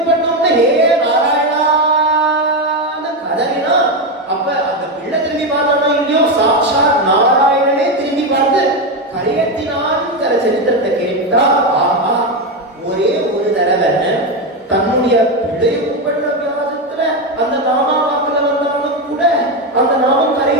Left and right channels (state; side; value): normal; both; correlation 0.11